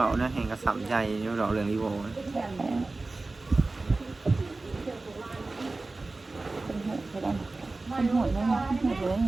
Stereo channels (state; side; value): quieter; left; 3.3 dB